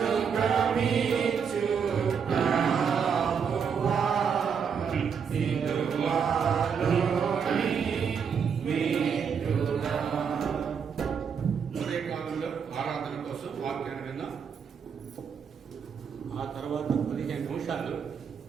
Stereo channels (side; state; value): left; quieter; 6.8 dB